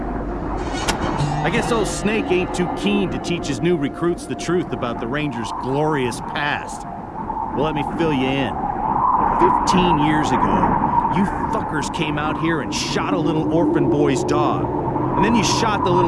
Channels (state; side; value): identical; both; correlation 1.00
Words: guess old Snake ain't too keen to teach his new recruits the truth about the Rangers' glorious past. Well, let me fill you in. 15 years ago, you fuckers came out here and shot a little orphan boy's dog. And then you shot the